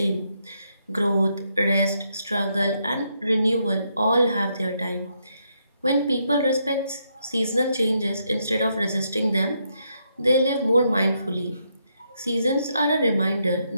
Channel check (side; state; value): both; inverted; correlation -0.78